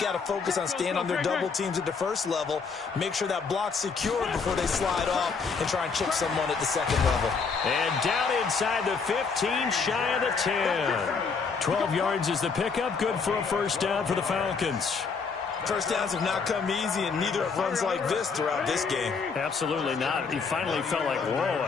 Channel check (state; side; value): quieter; right; 5.2 dB